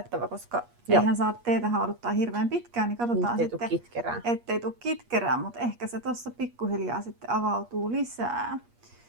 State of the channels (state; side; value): late; left; 8.4 ms